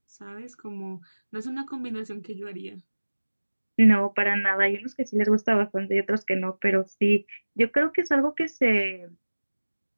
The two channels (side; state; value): both; inverted; correlation -1.00